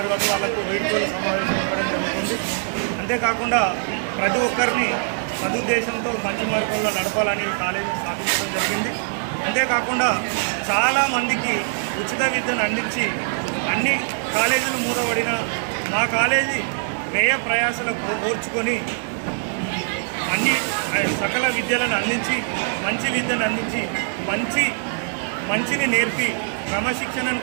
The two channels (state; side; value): silent; left; digital silence